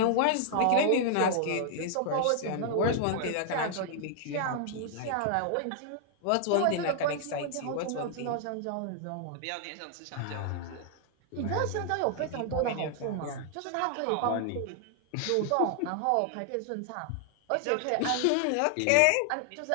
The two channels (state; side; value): different; both; correlation 0.00